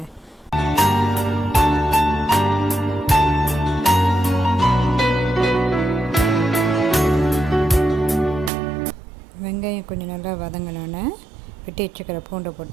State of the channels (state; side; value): drops out; left; at 8.5 s